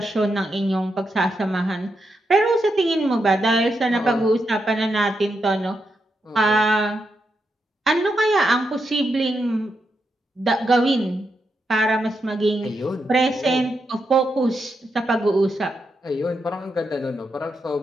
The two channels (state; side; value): normal; both; correlation 0.84